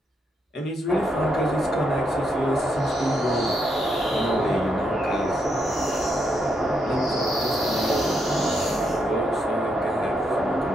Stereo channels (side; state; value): both; normal; correlation 0.78